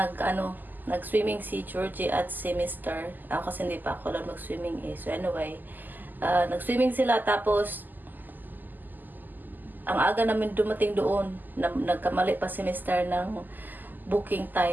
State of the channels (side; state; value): left; late; 0.087 ms